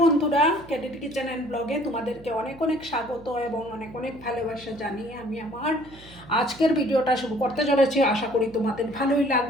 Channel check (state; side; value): noise; right; hum, 20 dB below the sound